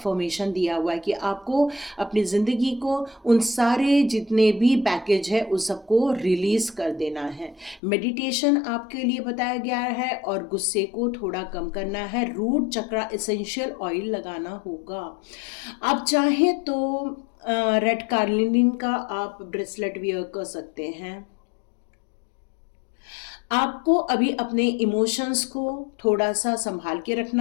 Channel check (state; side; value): drops out; right; at 7.8 s